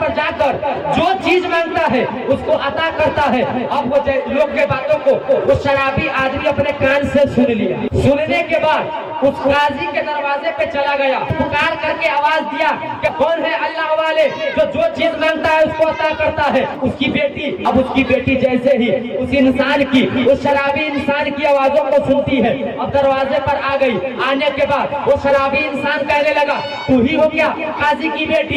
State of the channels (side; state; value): both; identical; correlation 1.00